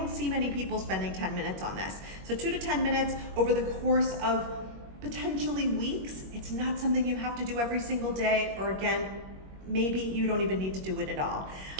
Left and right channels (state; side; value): late; left; 21 ms